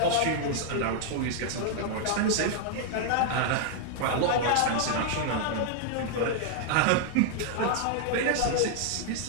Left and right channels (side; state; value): both; different; correlation 0.00